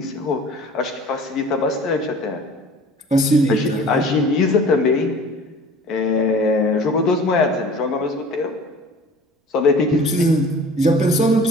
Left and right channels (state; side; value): normal; both; correlation 0.44